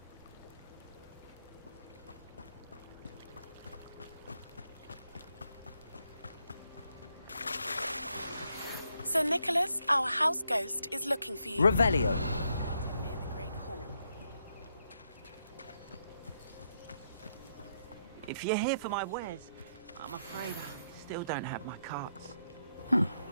Sir Nicholas, our house ghost, is looking for you. Revelio. If you're here for my wares, I'm afraid I still don't have my carts.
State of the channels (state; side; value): inverted; both; correlation -0.78